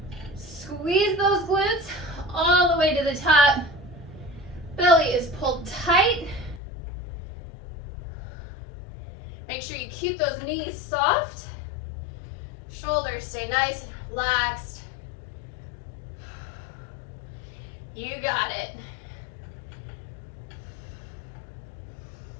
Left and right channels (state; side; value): drops out; right; at 6.6 s